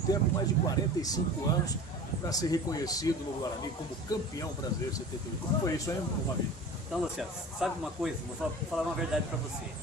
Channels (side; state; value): both; normal; correlation 0.38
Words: mais de 45 anos, para ser reconhecido no Guarani como campeão brasileiro 78. Como foi isso, hein, Mavilho? Então, Luciano, sabe uma coisa? Vou falar uma verdade para você.